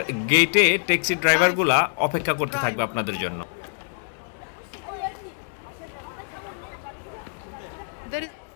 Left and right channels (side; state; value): right; silent; digital silence